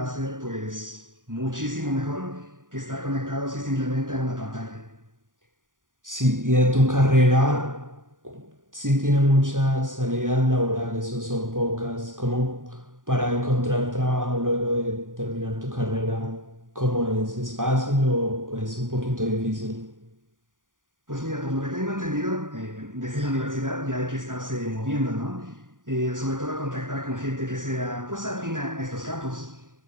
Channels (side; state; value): left; late; 0.89 ms